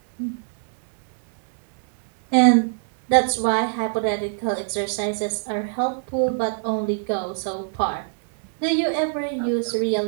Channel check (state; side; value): silent; left; digital silence